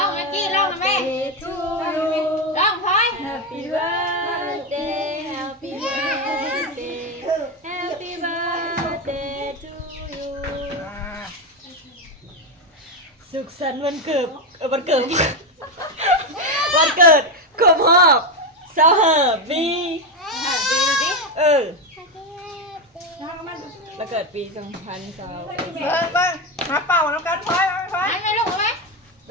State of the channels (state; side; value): normal; both; correlation 0.10